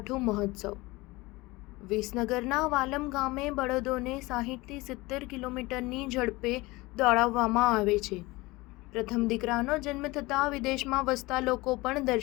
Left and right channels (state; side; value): quieter; right; 21.7 dB